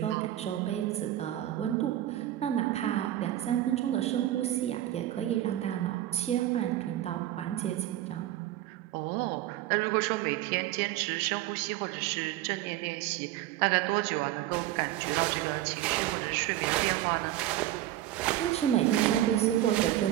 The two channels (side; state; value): left; quieter; 13.8 dB